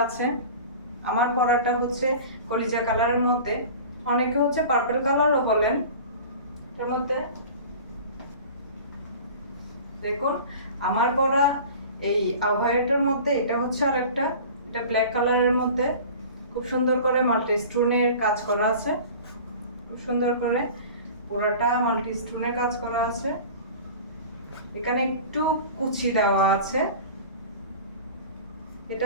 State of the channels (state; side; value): inverted; both; correlation -0.39